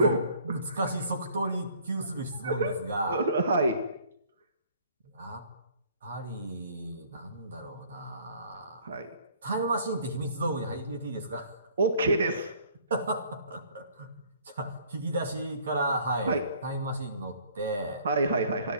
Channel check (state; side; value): inverted; both; correlation -0.57